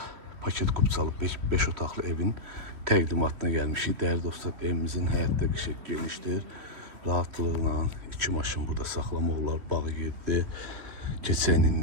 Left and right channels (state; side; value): late; left; 3.1 ms